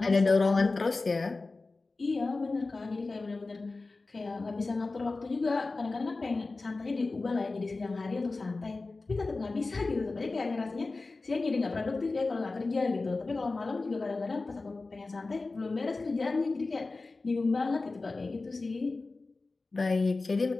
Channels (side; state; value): right; quieter; 3.6 dB